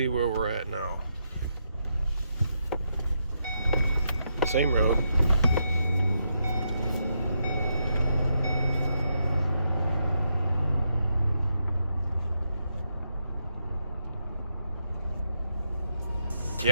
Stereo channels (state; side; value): inverted; both; correlation -0.82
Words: where we're at now. Same road.